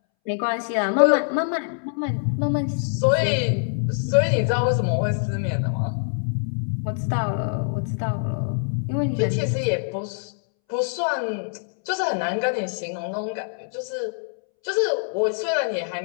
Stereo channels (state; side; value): silent; right; 62 dB below the other